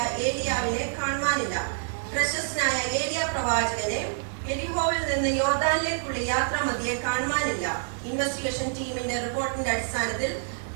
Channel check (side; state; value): left; silent; 60 dB below the other